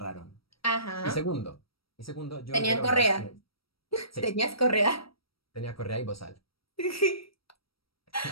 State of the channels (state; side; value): late; right; 0.75 ms